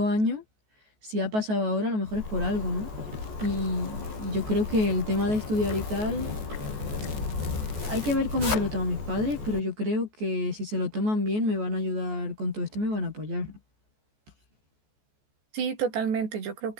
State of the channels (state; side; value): late; left; 14 ms